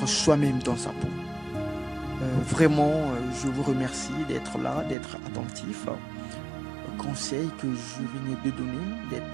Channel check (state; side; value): drops out; left; at 5.0 s